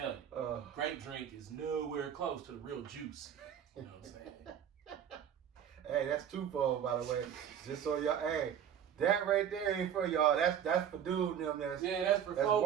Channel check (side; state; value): left; quieter; 8.9 dB